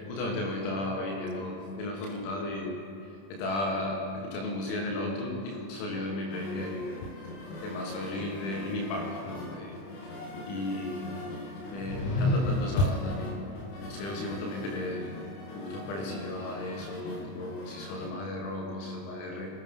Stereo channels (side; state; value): right; late; 31 ms